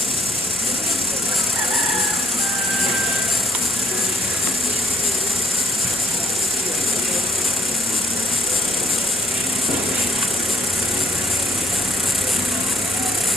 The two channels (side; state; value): both; normal; correlation 0.67